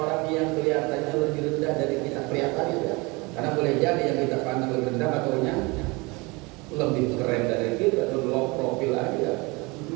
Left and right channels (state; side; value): quieter; left; 26.0 dB